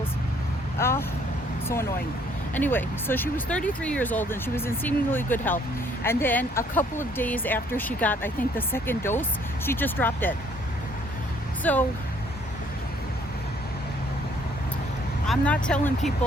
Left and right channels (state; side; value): normal; both; correlation 0.63